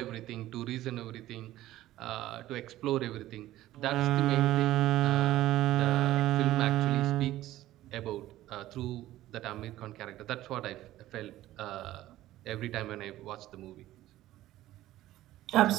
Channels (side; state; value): left; quieter; 14.9 dB